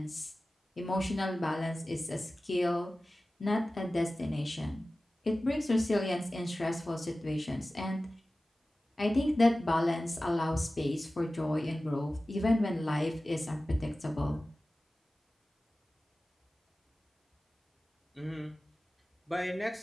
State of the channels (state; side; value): normal; both; correlation 0.96